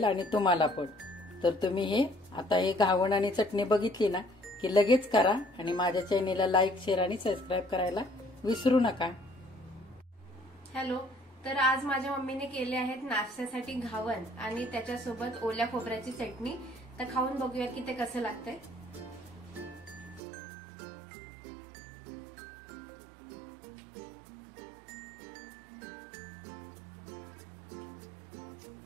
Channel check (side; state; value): left; drops out; at 20.2 s